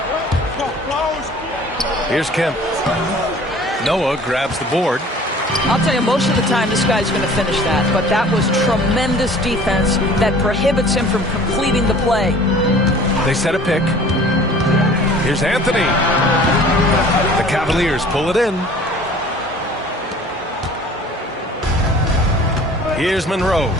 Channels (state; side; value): normal; both; correlation 0.48